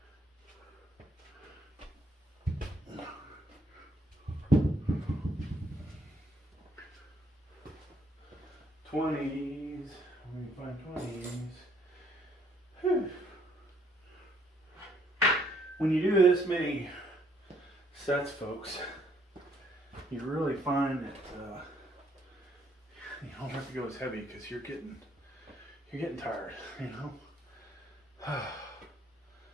'20s. Let me find '20s. Whew. When you do this many sets, folks, you really find that you don't have to go as heavy because you're getting tired, Wow.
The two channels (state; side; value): normal; both; correlation 0.67